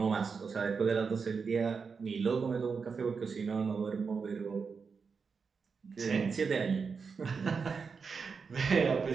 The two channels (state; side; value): quieter; left; 5.4 dB